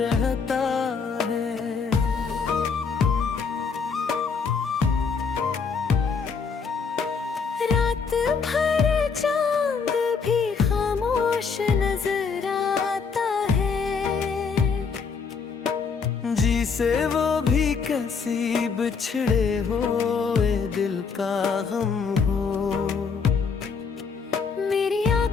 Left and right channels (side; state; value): right; quieter; 5.5 dB